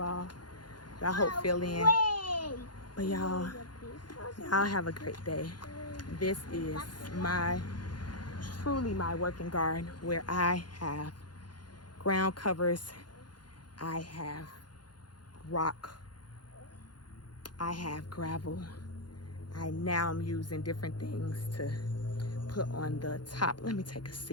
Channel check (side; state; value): right; late; 0.71 ms